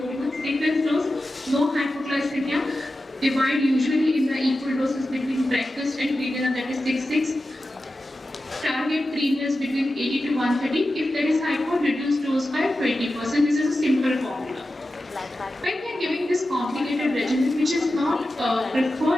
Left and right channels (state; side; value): normal; both; correlation 0.92